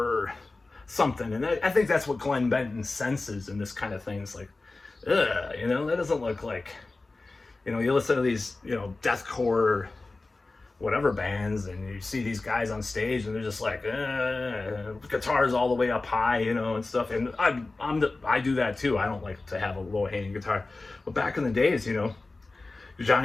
something. And I think that's what Glenn Benton senses in this kind of thing. It's like, ugh, you know, that doesn't look like, you know, you listen to these, you know, deathcore whatever bands and you see these guys on stage and they're just like guitars all the way up high, you know, and stuff. And I do that too. I don't like to have a low hanging guitar, but back in the days, you know,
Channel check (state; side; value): quieter; right; 3.4 dB